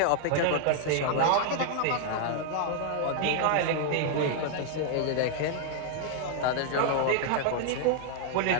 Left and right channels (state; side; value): different; both; correlation 0.00